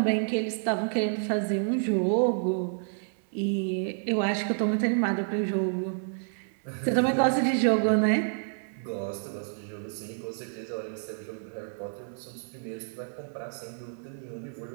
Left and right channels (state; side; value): silent; left; 58 dB below the other